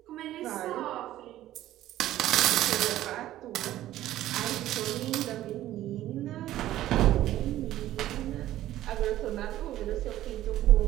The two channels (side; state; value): left; quieter; 13.9 dB